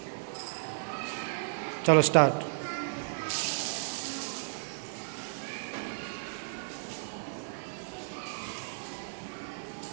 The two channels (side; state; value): left; silent; 55 dB below the other